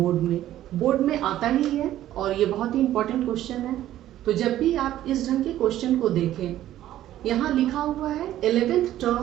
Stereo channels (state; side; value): quieter; left; 13.0 dB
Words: में आता ही है और ये बहुत ही इंपॉर्टेंट क्वेश्चन है। तो जब भी आप इस ढंग के क्वेश्चन को देखें, यहाँ लिखा हुआ है 11th